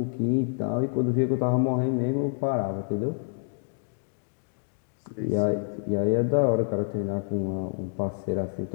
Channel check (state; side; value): silent; right; digital silence